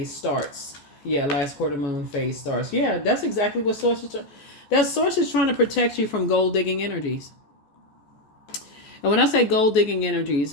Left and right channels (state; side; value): late; right; 14 ms